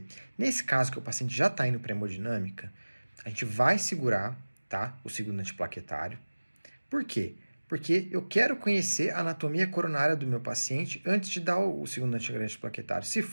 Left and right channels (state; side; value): inverted; both; correlation -1.00